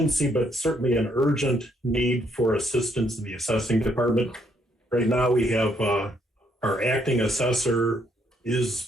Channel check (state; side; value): normal; both; correlation 0.72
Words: but certainly an urgent need for assistance in the assessing department. Right now we have our acting assessor